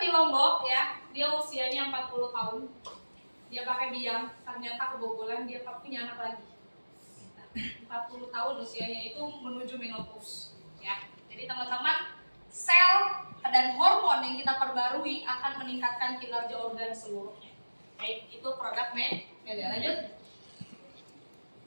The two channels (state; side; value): inverted; both; correlation -1.00